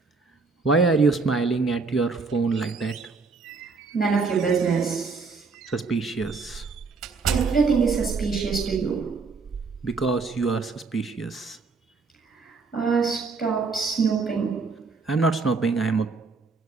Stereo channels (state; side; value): quieter; left; 4.4 dB